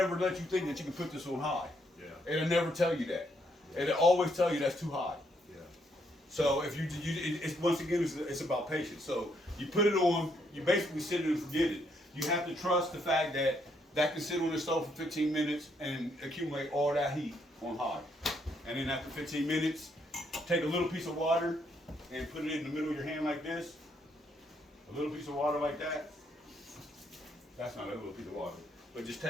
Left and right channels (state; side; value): normal; both; correlation 0.74